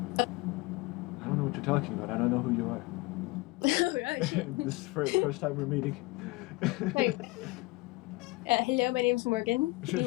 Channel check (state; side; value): quieter; right; 22.8 dB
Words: I don't know what you're talking about. I don't know who you are. Right. This is the first time we're meeting. Wait, hello, my name's Morgan.